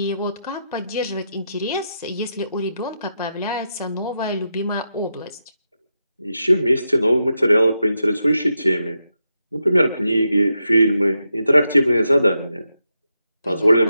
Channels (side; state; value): both; inverted; correlation -0.86